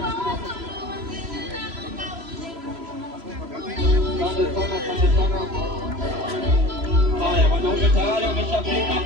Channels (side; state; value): left; late; 3.0 ms